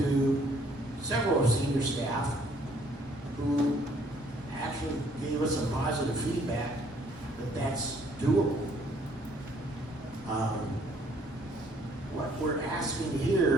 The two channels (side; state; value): both; normal; correlation 0.63